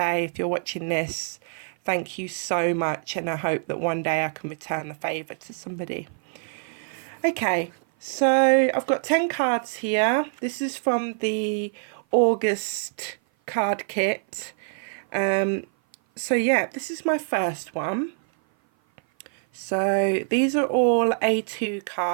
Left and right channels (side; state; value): left; silent; 56 dB below the other